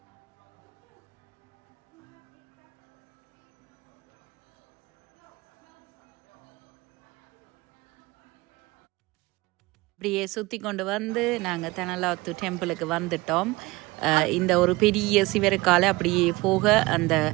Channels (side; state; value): left; quieter; 21.6 dB